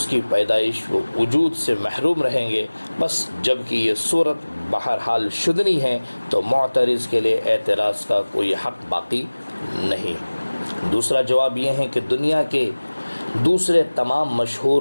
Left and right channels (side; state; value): both; inverted; correlation -1.00